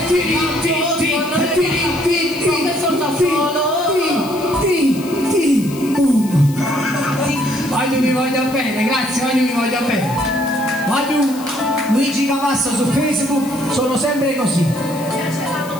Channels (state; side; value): noise; left; hiss, 17 dB below the sound